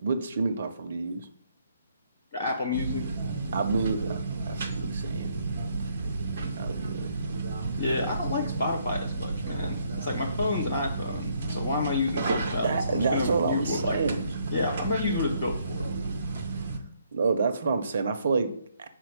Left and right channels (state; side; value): inverted; both; correlation -0.70